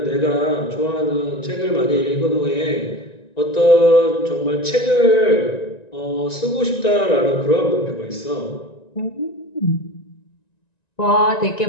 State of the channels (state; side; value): late; right; 1.9 ms